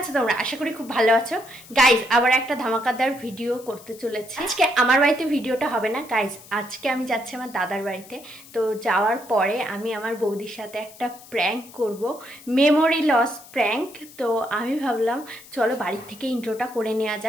তোমরা? আশা করি খুব ভালো আছো। গাইস, আবার একটা ধামাকাদার ভিডিও করতে চলেছি। আজকে আমার বাড়িতে ভিডিওটা হবে না গাইস, আজকে আমি যাচ্ছি আমার দাদার বাড়িতে। তো যাওয়ার পরে আমি আমার বৌদির সাথে একটা প্র্যাঙ্ক করব, মেমোরি লস প্র্যাঙ্ক। তো আমি ভাবলাম চলো বাড়ির থেকে ইন্ট্রোটা করে নেওয়া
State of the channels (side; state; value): left; noise; hiss, 20 dB below the sound